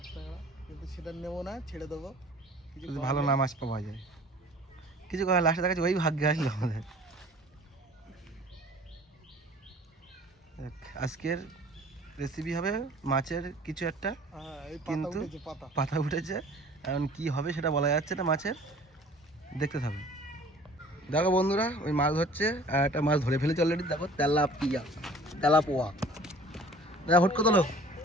কিন্তু সেটা নেবো না, ছেড়ে দেবো। কিছু ভালো না মাছ পাওয়া যায়, কিছু করার লাস্টে দেখাচ্ছে ওই ভাগ্যে আসলো আমাদের। আজকের রেসিপি হবে মাছের কিছু একটা, কিন্তু পাতা উঠেছে, এখন কি হবে সেটা বলা যাচ্ছে না মাছের, দেখতে থাকো। দেখো বন্ধুরা, ওই মাছ ধরছে আর একটা মাছ ধরে ফেলেছে অলরেডি। দেখো তেলাপোয়া, দেখো হুটকো তোলো,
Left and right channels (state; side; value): normal; both; correlation 0.49